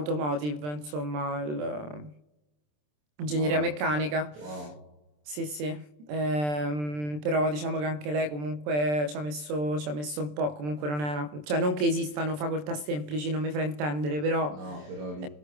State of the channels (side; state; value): left; late; 27 ms